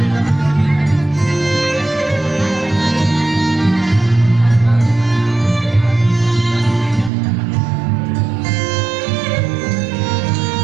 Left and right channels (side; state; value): left; drops out; at 7.1 s